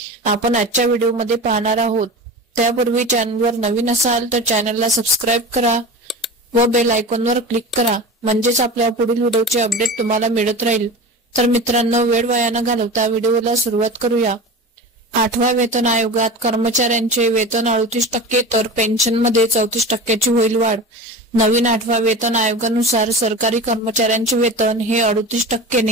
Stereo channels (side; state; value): both; normal; correlation 0.30